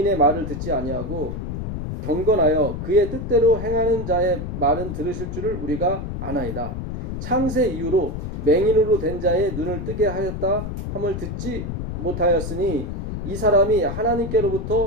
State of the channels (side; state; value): left; noise; rumble, 5 dB below the sound